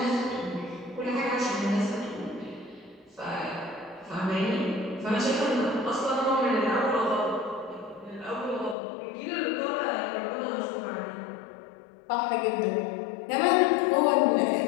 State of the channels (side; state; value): right; drops out; at 8.8 s